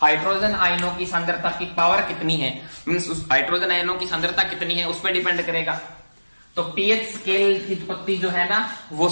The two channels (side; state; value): both; inverted; correlation -1.00